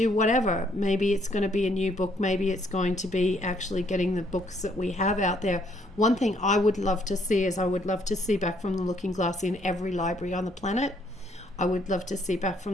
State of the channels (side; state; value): both; normal; correlation 0.67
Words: whatever, maybe it's going to be a new book, maybe it's going to be actually getting the books that we have out there. One thing I would love to see is, I would love to see Back from the Looking Glass in every library on the planet. I would love to see Back